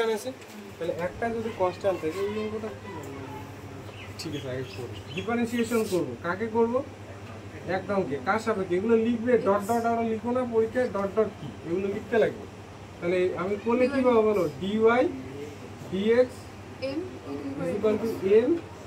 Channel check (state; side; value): identical; both; correlation 1.00